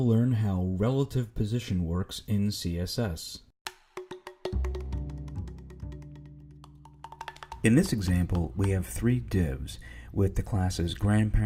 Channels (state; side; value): identical; both; correlation 1.00